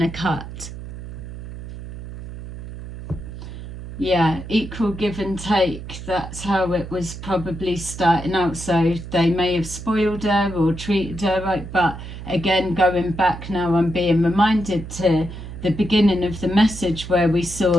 a cut. Yeah, equal give and take. That's how it was probably starting out. So they may have spoiled her or treated her right. But again, going back now, I'm being reminded to the beginning of the message where we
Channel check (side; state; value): right; noise; hum, 11 dB below the sound